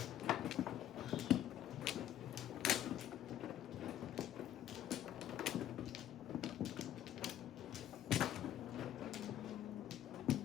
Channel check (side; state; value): right; quieter; 11.6 dB